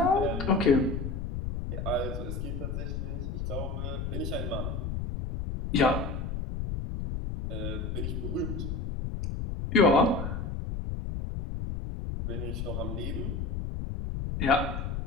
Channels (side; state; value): left; noise; rumble, 3 dB below the sound